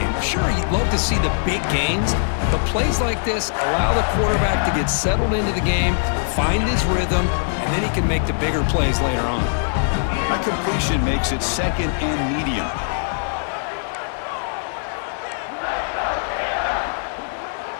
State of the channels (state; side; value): silent; right; digital silence